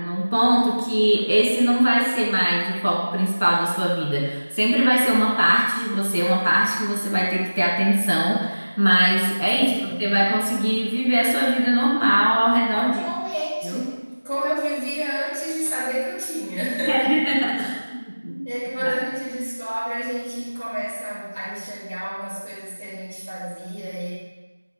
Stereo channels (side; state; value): both; inverted; correlation -1.00